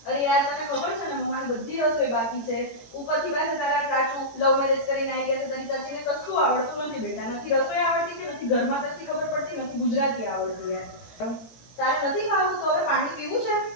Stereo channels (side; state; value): right; late; 18 ms